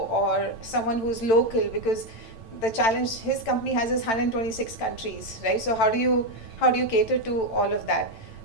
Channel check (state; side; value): late; right; 8.9 ms